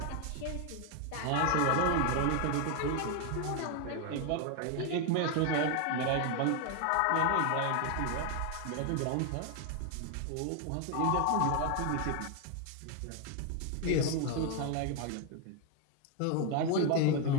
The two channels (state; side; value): different; both; correlation 0.01